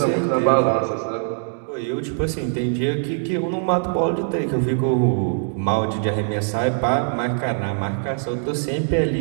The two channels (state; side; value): silent; left; digital silence